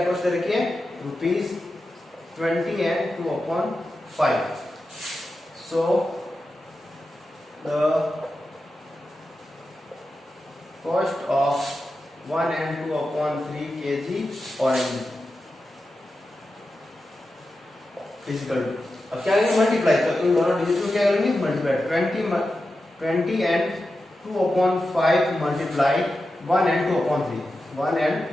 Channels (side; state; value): both; normal; correlation 0.91